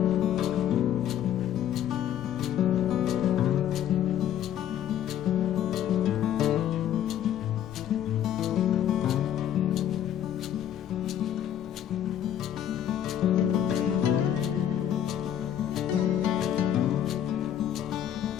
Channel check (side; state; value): right; quieter; 10.5 dB